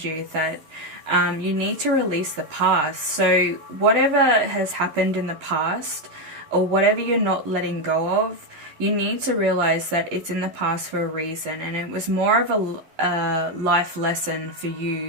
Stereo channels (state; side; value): late; left; 11 ms